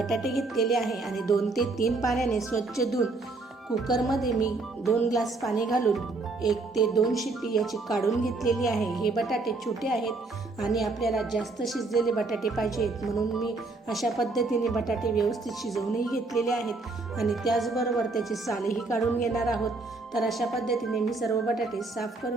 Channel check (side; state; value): left; quieter; 3.5 dB